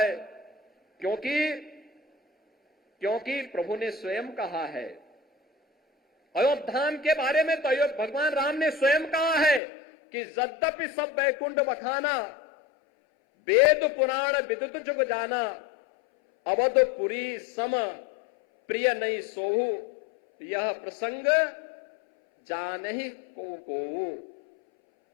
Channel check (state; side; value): drops out; right; at 9.6 s